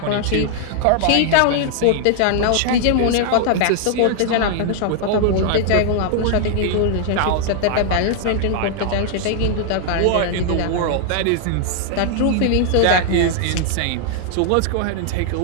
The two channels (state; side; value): different; both; correlation 0.00